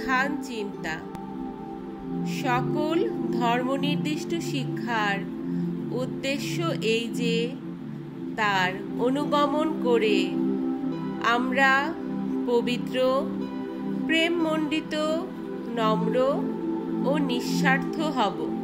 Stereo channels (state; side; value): identical; both; correlation 1.00